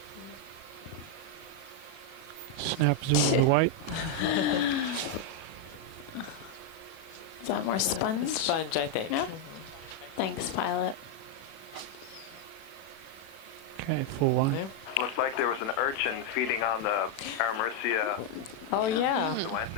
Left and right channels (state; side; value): late; right; 37 ms